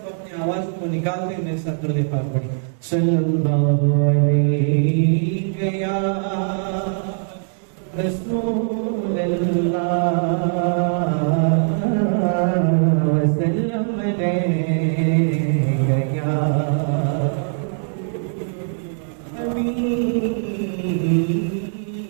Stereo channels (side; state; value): left; silent; digital silence